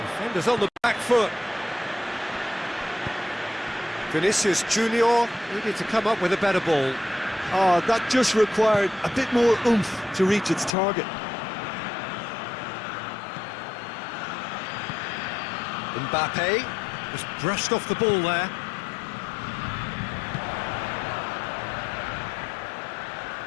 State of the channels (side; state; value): right; drops out; at 10.8 s